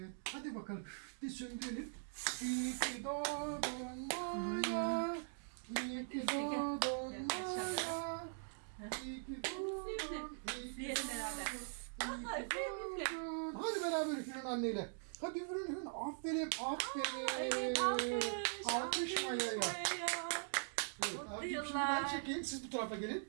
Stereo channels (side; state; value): left; silent; digital silence